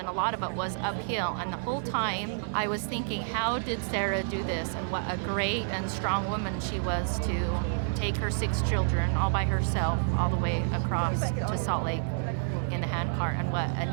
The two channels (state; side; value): silent; left; digital silence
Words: a lot of it was uphill. And the whole time I was thinking, how did Sarah do this? And what a great and strong woman she was to take her 6 children all by herself all the way across to Salt Lake in the handcart. And what a